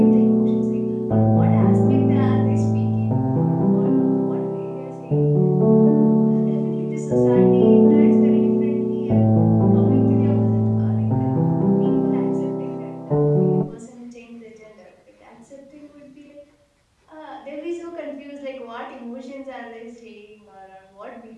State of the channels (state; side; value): identical; both; correlation 1.00